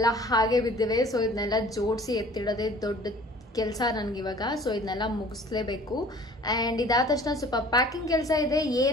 ಹಾಗೆ ಬಿದ್ದಿವೆ. ಸೊ ಇದನ್ನೆಲ್ಲ ಜೋಡಿಸಿ ಎತ್ತಿಡೋದೇ ದೊಡ್ಡ ಕೆಲಸ ನನ್ಗಿವಾಗ. ಸೊ ಇದನ್ನೆಲ್ಲ ಮುಗಿಸ್ಲೇಬೇಕು. ಅಂಡ್ ಇದಾದ ತಕ್ಷಣ ಸ್ವಲ್ಪ ಪ್ಯಾಕಿಂಗ್ ಕೆಲಸ ಇದೆ.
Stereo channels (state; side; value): normal; both; correlation 0.49